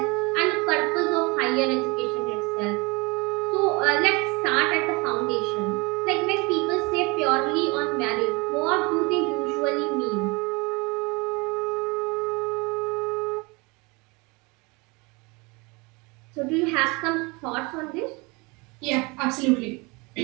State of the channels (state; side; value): quieter; left; 27.2 dB